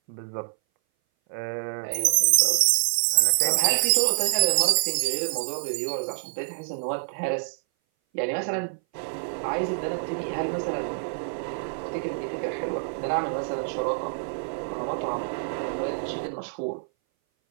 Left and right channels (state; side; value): silent; left; 59 dB below the other